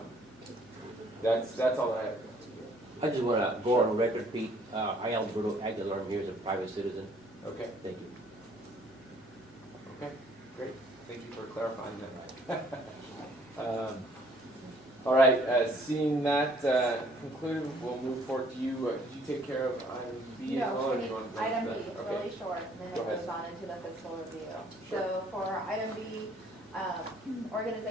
that's all I have. I just want to go on record, Pete. I, Alberto Aguilar, I'm here as a private citizen. Okay. Thank you. Okay, great. Thank you for clarifying that. All right, seeing that concluded, we'll move forward to you. Did you take care of item B as well? Or do you want to go Item to B, that? it's Okay. really short, and then Go it ahead. goes on into the fiscal review. Sure. So for item B,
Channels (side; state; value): both; normal; correlation 0.61